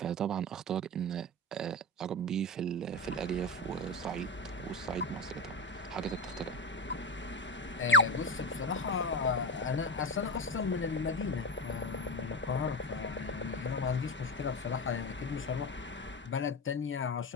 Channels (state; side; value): normal; both; correlation 0.19